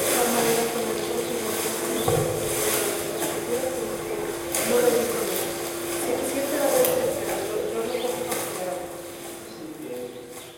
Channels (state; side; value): identical; both; correlation 1.00